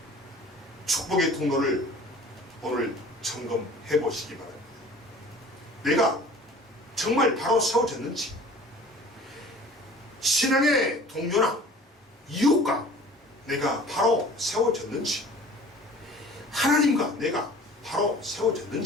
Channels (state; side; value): normal; both; correlation 0.47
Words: 축복의 통로를 오늘 점검해 보시기 바랍니다. 내가 정말 바로 세워졌는지, 신앙의 동료나 이웃과 내가 바로 세워졌는지, 하나님과 내가 바로